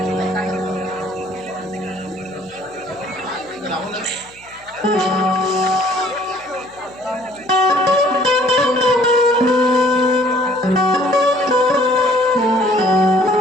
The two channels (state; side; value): noise; left; hum, 28 dB below the sound